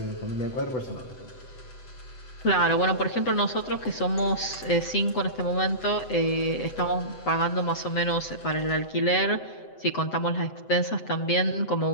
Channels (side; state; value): right; late; 7.9 ms